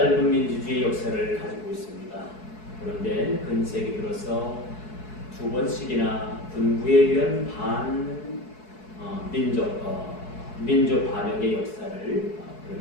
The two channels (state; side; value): late; right; 4.7 ms